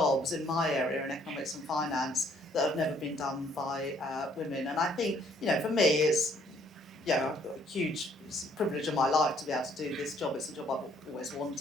in my area in economics and finance that have never been done by women. And I think, for me, it's I've got a huge privilege in my life to be able to do this job. It's a job I've always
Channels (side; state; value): both; normal; correlation 0.64